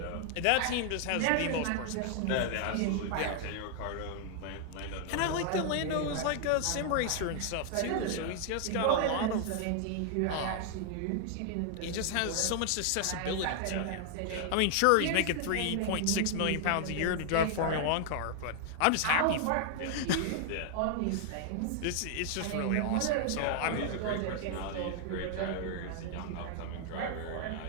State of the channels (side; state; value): both; different; correlation 0.00